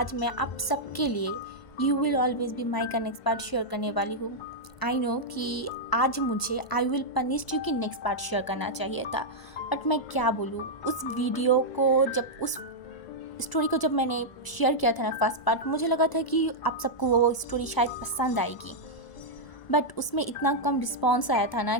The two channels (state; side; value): late; right; 1.0 ms